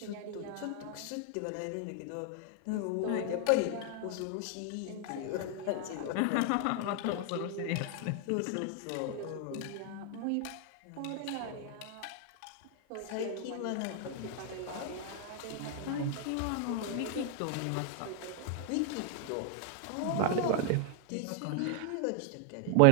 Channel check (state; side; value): different; both; correlation 0.00